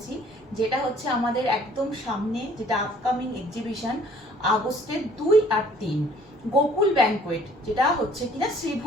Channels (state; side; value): normal; both; correlation 0.56